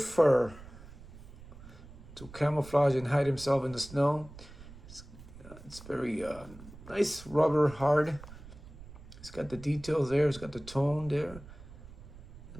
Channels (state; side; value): noise; right; rumble, 17 dB below the sound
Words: fur to camouflage and hide himself in the snow. It's very nice, rubber, hard. It's got the details there. It's got the tone there.